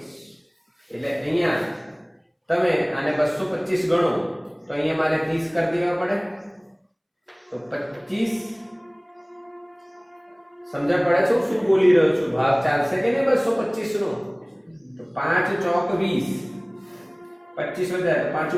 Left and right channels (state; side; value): identical; both; correlation 1.00